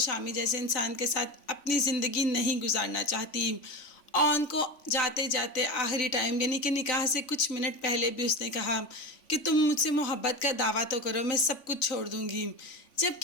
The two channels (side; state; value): right; late; 3.5 ms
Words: جیسے انسان کے ساتھ اپنی زندگی نہیں گزارنا چاہتی۔ اون کو جاتے جاتے آخری ٹائم یعنی کہ نکاح سے کچھ منٹ پہلے بھی اس نے کہا کہ تم مجھ سے محبت کا دعویٰ تو کرو، میں سب کچھ چھوڑ دوں گی،